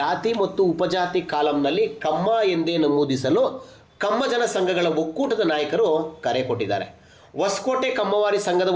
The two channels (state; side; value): identical; both; correlation 1.00